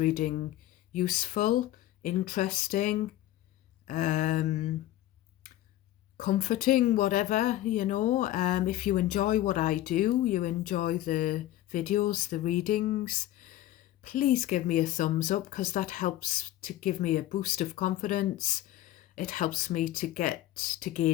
useful, interesting, comforting, whatever, if you enjoy what I do, you enjoy the videos, the readings, please give me a thumbs up, because that helps to give me a boost of confidence. It helps me to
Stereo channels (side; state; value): right; quieter; 14.3 dB